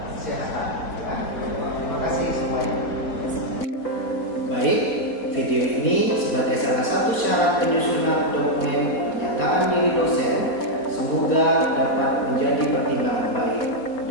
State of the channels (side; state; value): right; late; 4.1 ms